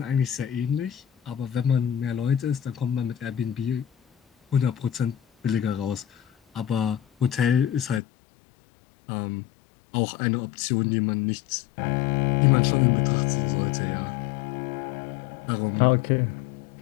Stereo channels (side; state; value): right; drops out; at 8.0 s